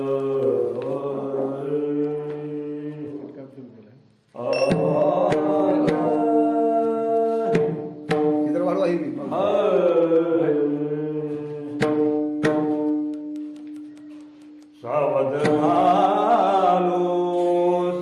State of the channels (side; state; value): both; identical; correlation 1.00